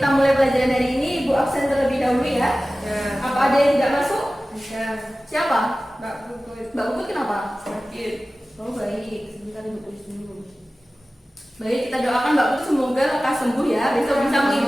mulai pelajaran hari ini, Ibu absen terlebih dahulu ya. Apa ada yang tidak masuk? Siapa? Mbak Puput. Mbak Puput kenapa? Sakit. Oh baik, sebentar Ibu tulis dulu. Baik, kita doakan Mbak Puput semoga lekas sembuh ya. Besok bisa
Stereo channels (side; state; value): both; normal; correlation 0.96